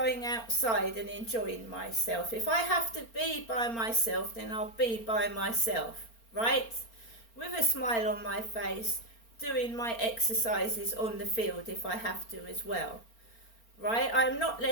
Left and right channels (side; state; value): right; late; 4.4 ms